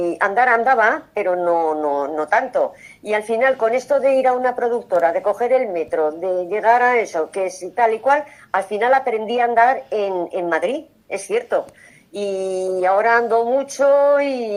andar andaba, pero no tanto. Y al final, con esto de ir a una productora, de coger el metro, de llegar a eso, que es tal y cual, al final aprendí a andar en Madrid, es cierto. Y ahora ando mucho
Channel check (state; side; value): identical; both; correlation 1.00